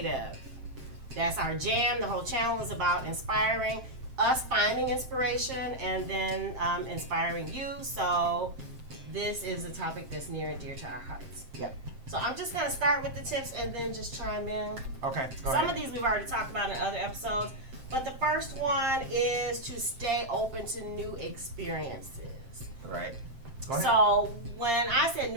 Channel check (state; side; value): late; left; 7.6 ms